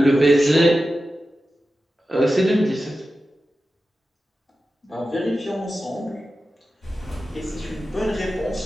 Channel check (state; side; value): normal; both; correlation 0.93